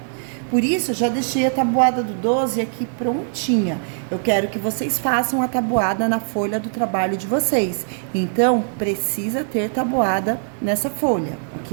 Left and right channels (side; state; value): left; silent; 62 dB below the other